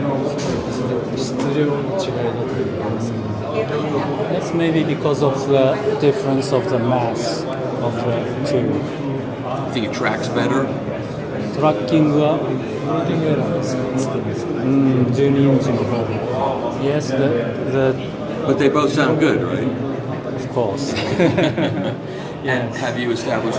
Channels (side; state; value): both; identical; correlation 1.00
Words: That's maybe because of the difference of the mass of the two. I think it tracks better. Tracking は12インチの方で。Yes, But they both sound good, right? Of course. And have you